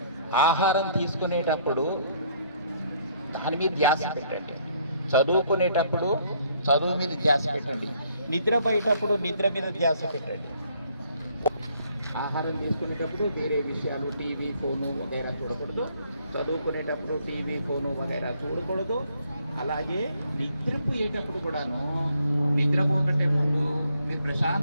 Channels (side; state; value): both; inverted; correlation -0.65